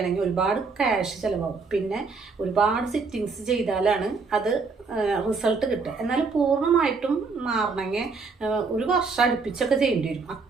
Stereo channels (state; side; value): quieter; left; 4.5 dB